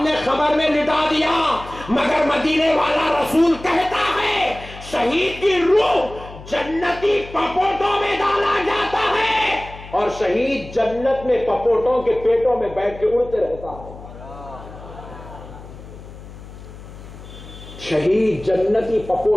कब्र में लिटा दिया। मगर मदीने वाला रसूल कहता है शहीद की रूह जन्नती पपोटों में डाला जाता है, और शहीद जन्नत में पपोटों के पेटों में बैठ के उड़ते रहता है। शहीद जन्नती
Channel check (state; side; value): noise; left; hum, 16 dB below the sound